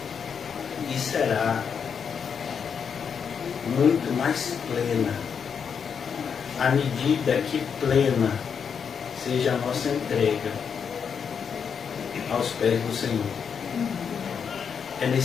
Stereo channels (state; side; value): quieter; right; 6.8 dB